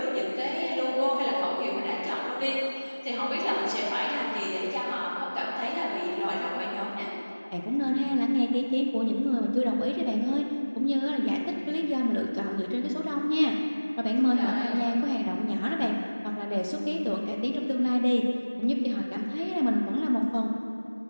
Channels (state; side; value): inverted; both; correlation -1.00